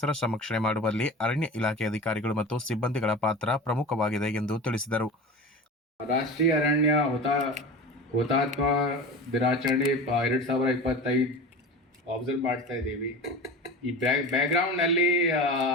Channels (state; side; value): normal; both; correlation 0.32